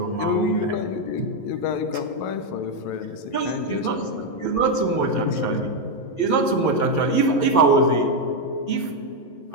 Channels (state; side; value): late; right; 11 ms